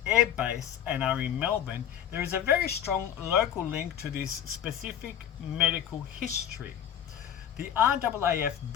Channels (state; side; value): quieter; right; 9.9 dB